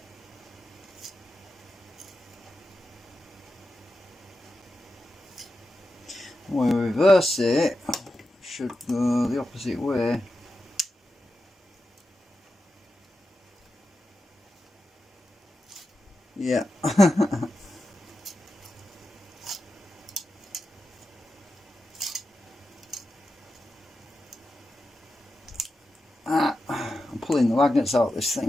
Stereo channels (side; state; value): both; normal; correlation 0.90